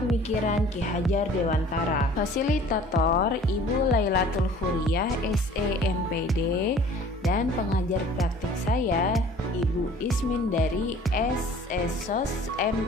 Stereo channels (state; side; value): normal; both; correlation 0.50